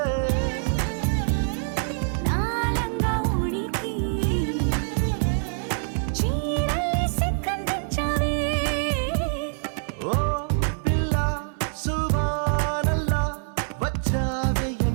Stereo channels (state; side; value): silent; left; 57 dB below the other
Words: నాలంగా ఉడికి చీరల్ని సిక్కందించావే ఓ పిల్ల సువానల్లా వచ్చావే